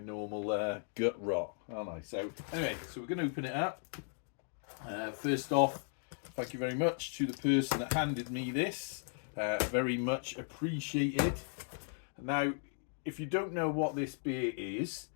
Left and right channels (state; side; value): silent; right; digital silence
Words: gut rot, aren't I? So anyway, so we're going to open it up. First off, thank you very much to the person that handed me this. Very much appreciated. Now, if you don't know what this beer is,